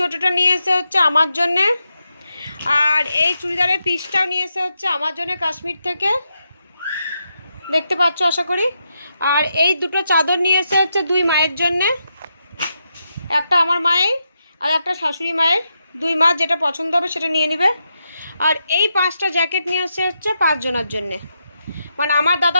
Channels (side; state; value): both; inverted; correlation -0.84